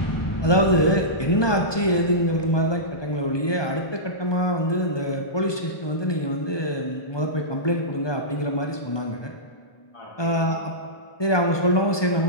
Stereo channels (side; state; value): right; late; 1.2 ms